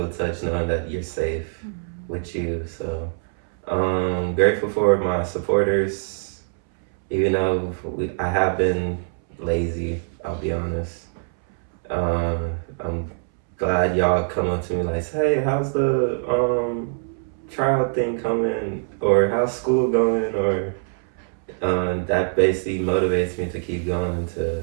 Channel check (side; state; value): left; silent; 63 dB below the other